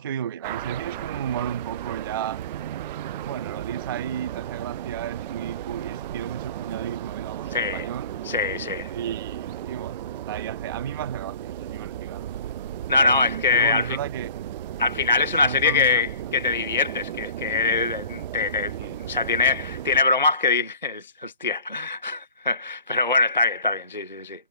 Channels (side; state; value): both; inverted; correlation -0.45